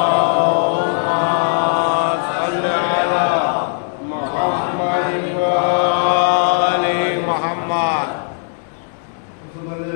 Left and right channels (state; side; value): silent; right; digital silence